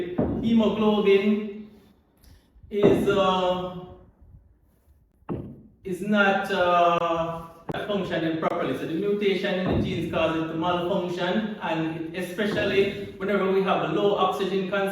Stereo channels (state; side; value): identical; both; correlation 1.00